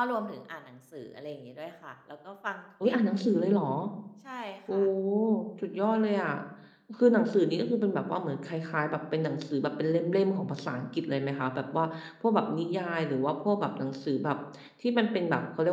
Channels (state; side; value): identical; both; correlation 1.00